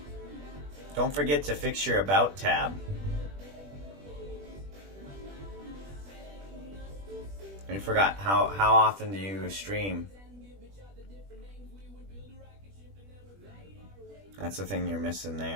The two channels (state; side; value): late; left; 20 ms